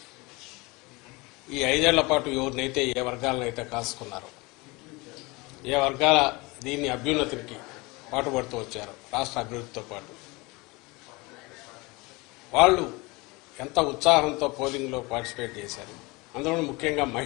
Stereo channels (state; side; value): quieter; right; 24.6 dB